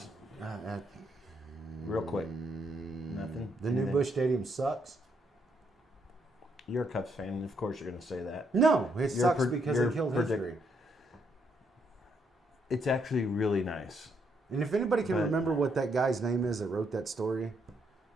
week? real quick. Nothing. The new Anything? Busch Stadium sucks. You're a Cubs fan, and of course you're going to say that. No, it Your sucks pre- because your it killed predict- history. It's actually really nice. And if anybody can But- remember what that guy's name is that wrote that story,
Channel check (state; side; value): normal; both; correlation 0.74